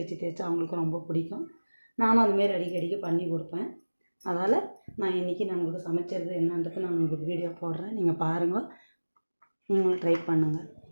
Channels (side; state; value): both; inverted; correlation -1.00